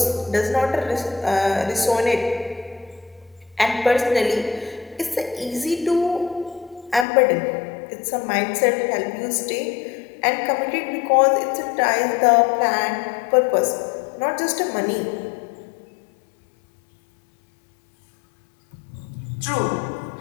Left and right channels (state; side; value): drops out; right; at 7.1 s